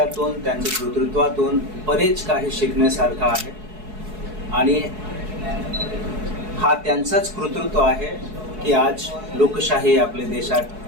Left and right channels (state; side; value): late; left; 4.7 ms